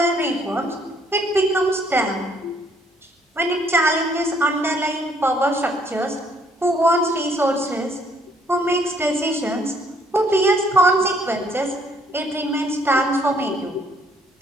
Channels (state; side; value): normal; both; correlation 0.65